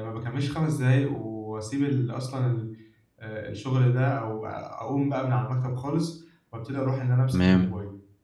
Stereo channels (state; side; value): identical; both; correlation 1.00